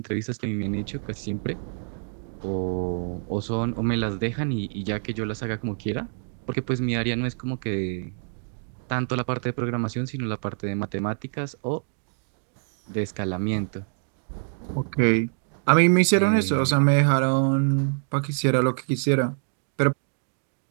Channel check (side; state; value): left; silent; digital silence